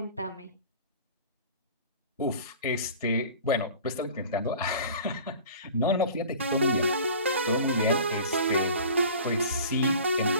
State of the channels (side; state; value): both; inverted; correlation -0.42